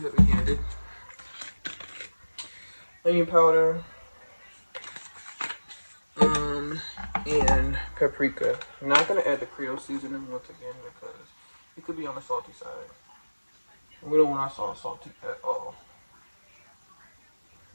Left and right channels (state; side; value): inverted; both; correlation -1.00